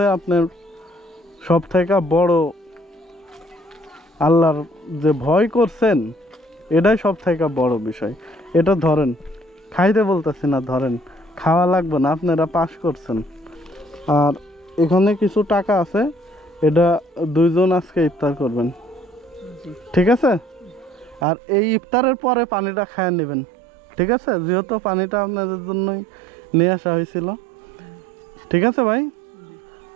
আপনার সব থেকে বড়, আল্লাহর যে ভয় করছেন এটাই সব থেকে বড় বিষয়। এটা ধরেন, খাইতে বলতেছি না, ধরেন, খাওয়া লাগবে না, আপনারা পাস করছেন। আর এখানে কিছু টাকা আছে, এটা দুইজন আজকে ইফতার করবেন, জি ঠিক আছে? আর এই ইফতারের পরে পানিটা খায় নেবেন, ঠিক আছে? যেহেতু পানিটা আপনাদের জন্যই নিয়ে আসা হয়েছিল, ঠিক আছে ভাই?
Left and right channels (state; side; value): drops out; left; at 21.2 s